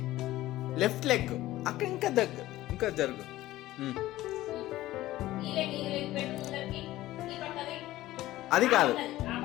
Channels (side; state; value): right; quieter; 16.1 dB